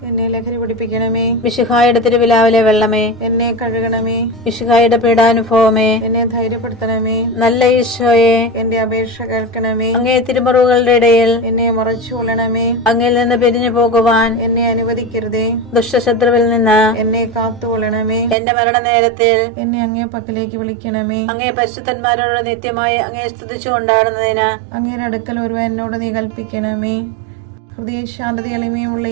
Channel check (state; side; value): drops out; left; at 18.4 s